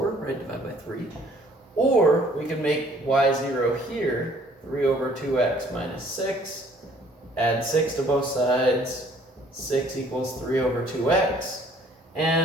right? Divide by 3. Or we could make y 0 here, 3 over 2x minus 6. Add 6 to both sides. 6 equals 3 over 2x.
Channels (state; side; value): normal; both; correlation 0.59